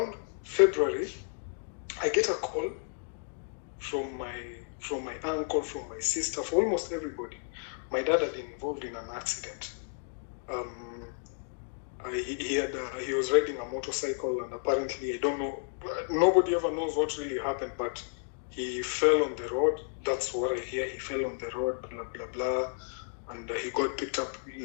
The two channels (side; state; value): right; silent; digital silence